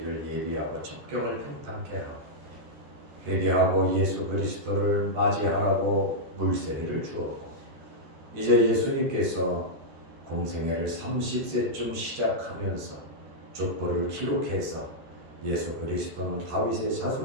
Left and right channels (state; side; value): late; left; 13 ms